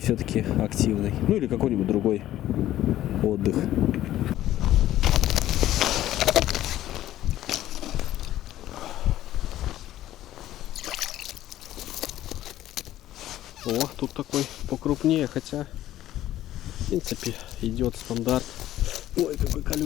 активный. Ну или какой-нибудь другой отдых. О, тут такой покрупнее, хотя в принципе идет стандарт. Ой, какой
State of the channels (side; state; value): right; quieter; 13.6 dB